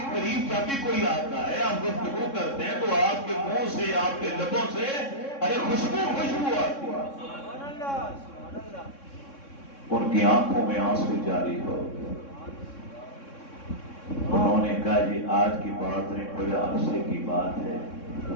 قریب جب بھی کوئی آتا ہے، آپ گفتگو کرتے ہیں تو آپ کے منہ سے، آپ کے لبوں سے ارے خوشبو خوشبو آتی ہے۔ ان کی آنکھوں میں آنسو جاری ہو گئے، انہوں نے کہا جی آج کی بات نہیں، بڑے عرصے کی بات ہے،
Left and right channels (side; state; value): right; late; 3.6 ms